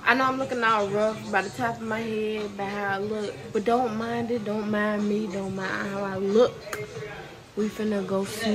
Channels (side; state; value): both; identical; correlation 1.00